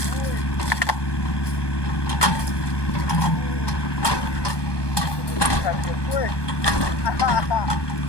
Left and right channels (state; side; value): late; right; 1.2 ms